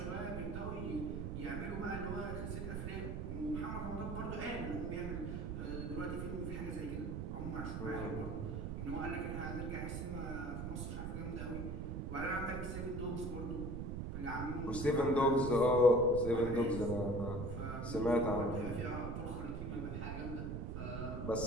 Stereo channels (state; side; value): noise; right; rumble, 4 dB below the sound